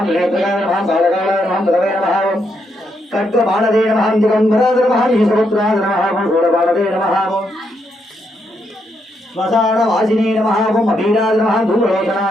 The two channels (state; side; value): normal; both; correlation 0.78